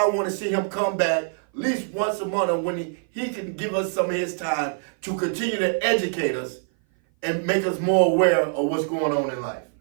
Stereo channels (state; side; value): silent; left; 57 dB below the other